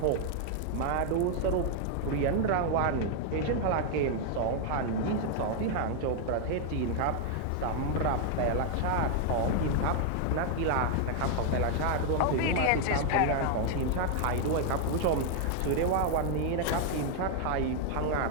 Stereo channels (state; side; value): different; both; correlation 0.00